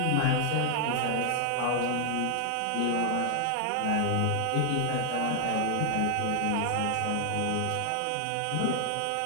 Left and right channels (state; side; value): different; both; correlation 0.00